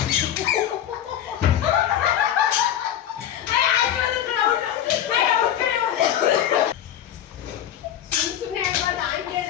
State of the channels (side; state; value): right; quieter; 10.7 dB